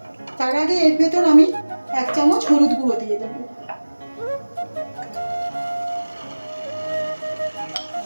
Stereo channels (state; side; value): inverted; both; correlation -1.00